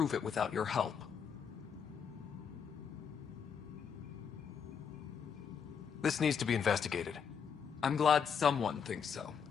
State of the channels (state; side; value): quieter; right; 6.9 dB